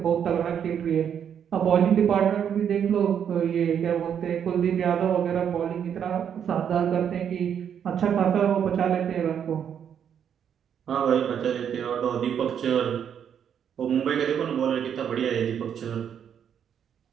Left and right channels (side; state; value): left; quieter; 8.4 dB